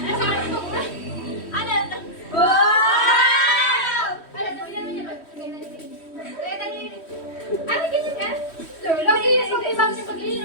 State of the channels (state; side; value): late; right; 3.1 ms